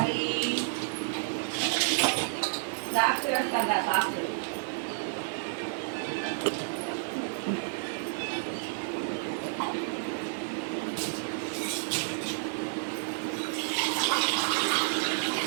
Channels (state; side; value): silent; left; 57 dB below the other